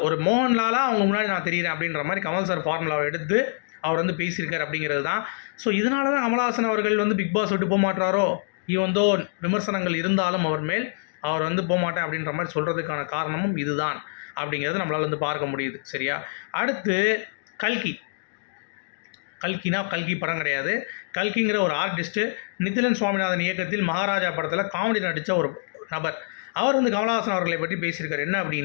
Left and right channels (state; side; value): silent; right; digital silence